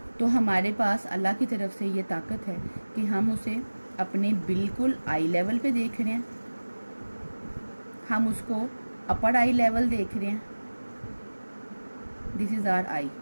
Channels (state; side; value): inverted; both; correlation -1.00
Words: तो हमारे पास अल्लाह की तरफ से ये ताकत है कि हम उसे अपने बिल्कुल आई लेवल पे देख रहे हैं, हम उसको अपर आई लेवल देख रहे हैं, दिस इज़ आवर आई,